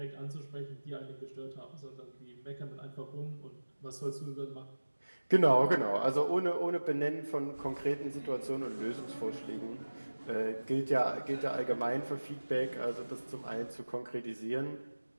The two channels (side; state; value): both; inverted; correlation -1.00